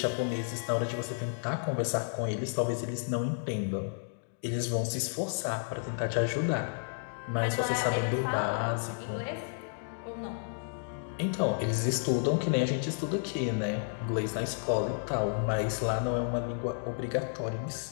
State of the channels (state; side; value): silent; right; digital silence